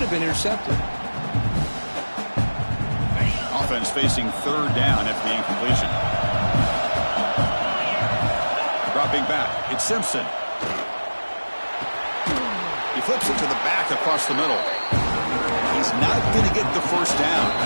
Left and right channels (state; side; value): inverted; both; correlation -1.00